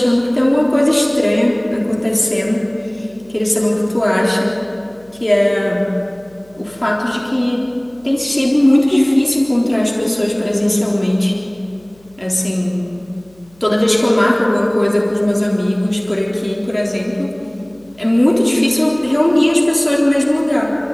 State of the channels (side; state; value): left; noise; hum, 29 dB below the sound